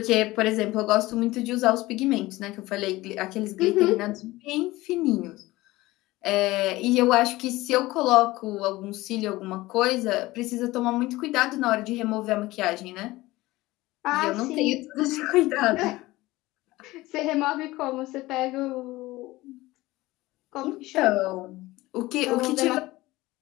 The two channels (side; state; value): right; quieter; 18.9 dB